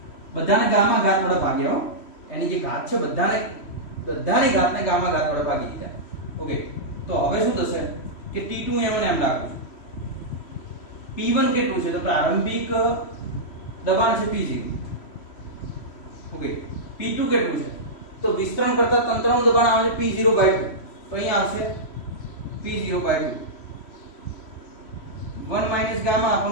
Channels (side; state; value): right; late; 3.1 ms